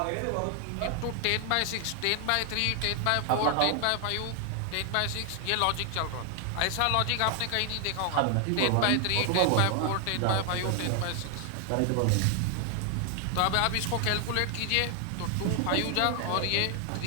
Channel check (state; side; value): different; both; correlation 0.00